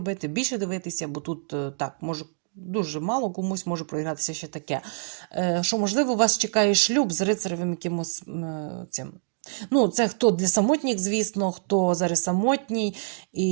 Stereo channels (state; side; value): silent; left; digital silence